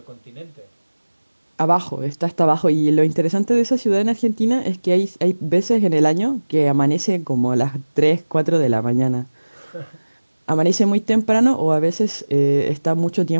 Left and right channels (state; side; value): inverted; both; correlation -1.00